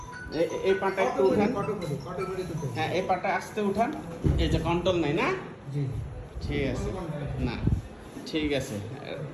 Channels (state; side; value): identical; both; correlation 1.00